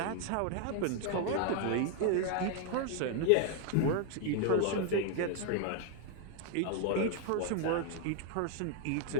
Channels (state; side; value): different; both; correlation 0.00